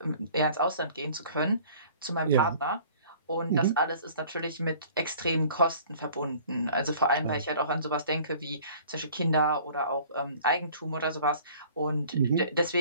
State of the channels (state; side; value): inverted; both; correlation -0.50